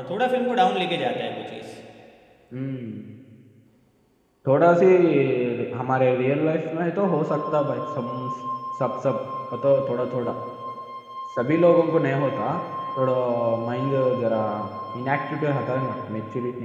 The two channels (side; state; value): both; identical; correlation 1.00